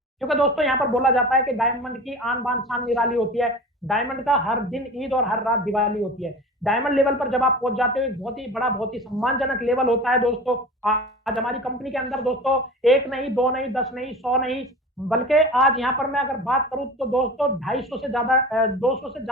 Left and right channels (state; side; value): normal; both; correlation 0.35